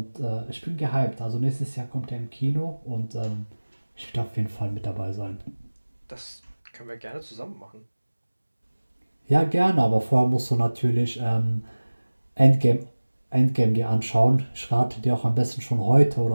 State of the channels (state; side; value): inverted; both; correlation -1.00